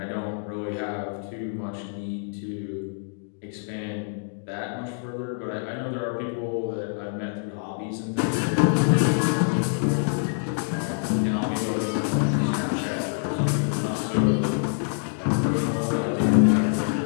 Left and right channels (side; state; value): right; silent; digital silence